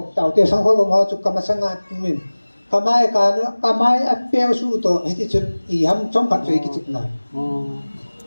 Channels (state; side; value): inverted; both; correlation -1.00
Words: tau te samkhol bo ma chu kama sanga min kamai ka no kamai a pe su to he ti chun I ham chom phat rei ki chik na